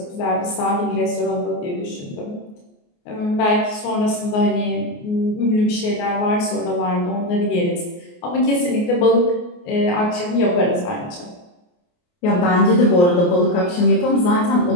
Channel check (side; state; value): right; late; 28 ms